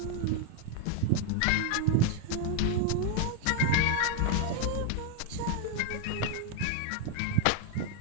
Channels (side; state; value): both; different; correlation 0.01